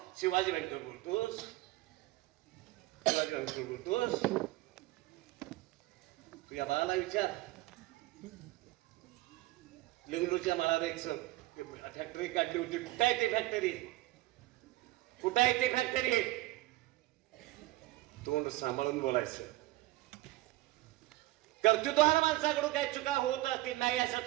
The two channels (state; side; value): quieter; left; 18.4 dB